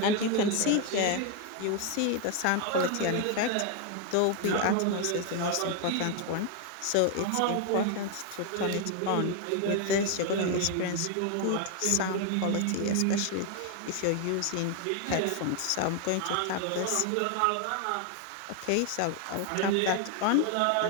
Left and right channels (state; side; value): different; both; correlation 0.01